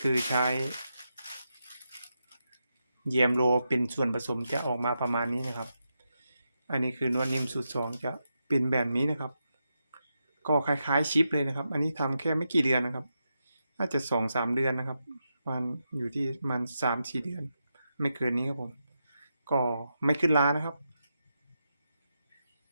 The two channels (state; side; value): inverted; both; correlation -0.86